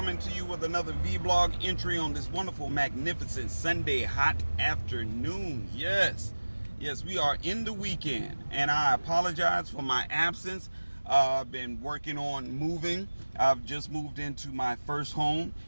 to you with another vlog entry on this wonderful, magnificent Sunday hot afternoon. Yes, we are in the weekend, and I apologize for my absence. I've been working on moving. I've just moved into my first home.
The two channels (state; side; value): inverted; both; correlation -1.00